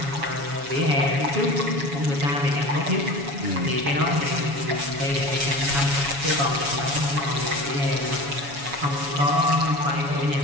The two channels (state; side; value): late; left; 7.1 ms